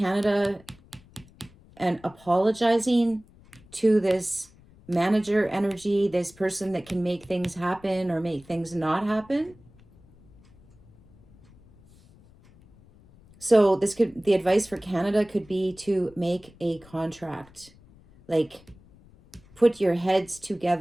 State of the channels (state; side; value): noise; left; rumble, 26 dB below the sound